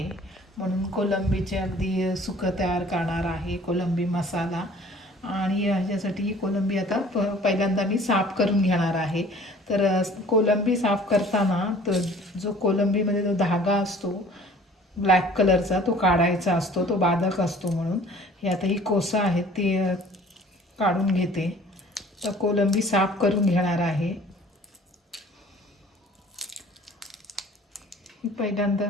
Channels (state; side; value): normal; both; correlation 0.51